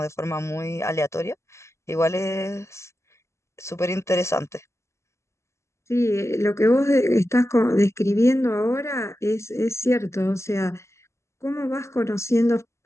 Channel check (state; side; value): late; right; 0.13 ms